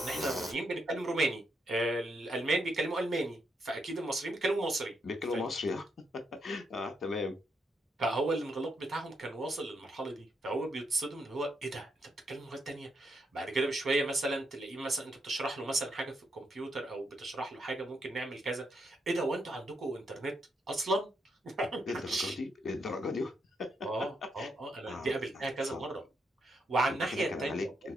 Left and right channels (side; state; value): both; normal; correlation 0.79